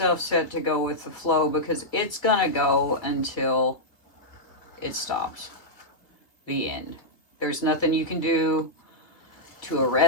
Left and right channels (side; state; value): right; late; 2.3 ms